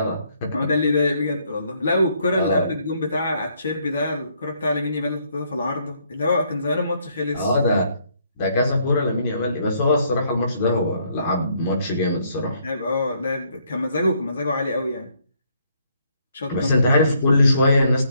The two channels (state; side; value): inverted; both; correlation -0.70